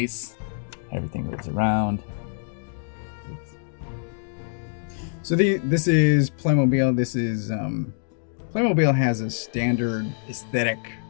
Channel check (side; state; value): right; silent; digital silence